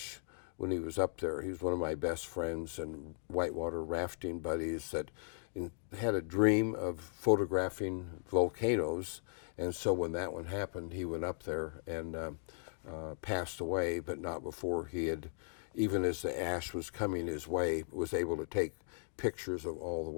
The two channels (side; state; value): right; silent; digital silence